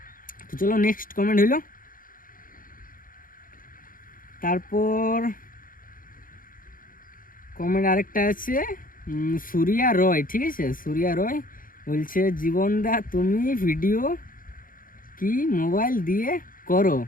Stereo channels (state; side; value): late; right; 0.40 ms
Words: তো চলো নেক্সট কমেন্ট হইল। তারপর কমেন্ট আরেকটা আছে সুরিয়া রয়, ঠিক আছে? সুরিয়া রয় বলছে জীবনদা তুমি ভিডিও কি মোবাইল দিয়ে করো?